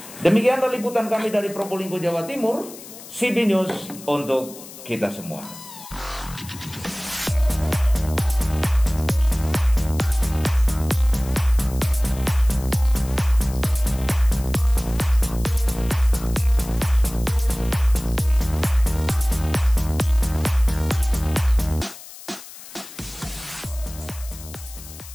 Demikianlah liputan kami dari Probolinggo, Jawa Timur. CB News untuk kita semua.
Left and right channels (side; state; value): left; noise; hiss, 16 dB below the sound